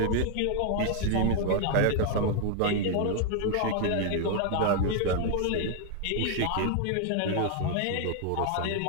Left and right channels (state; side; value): different; both; correlation 0.00